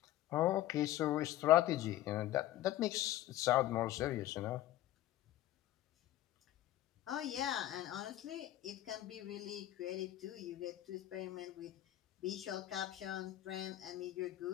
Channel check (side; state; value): right; quieter; 14.2 dB